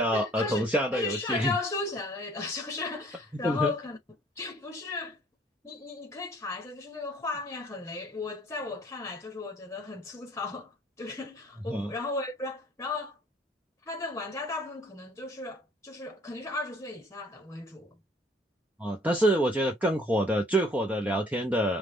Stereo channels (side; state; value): both; normal; correlation 0.56